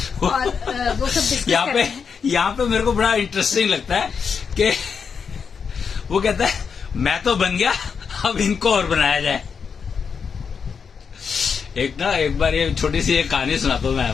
और वो सब डिस्कस कर रहे हैं। यहाँ पे मेरे को बड़ा इंटरेस्टिंग लगता है कि वो कहता है मैं तो बन गया, अब इनको और बनाया जाए। एक बार ये छोटी सी एक कहानी सुनाता हूँ मैं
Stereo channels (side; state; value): right; quieter; 6.2 dB